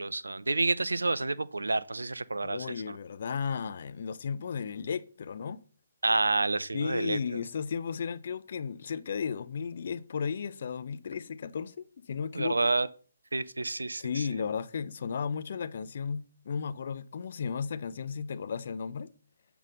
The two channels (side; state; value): both; inverted; correlation -0.87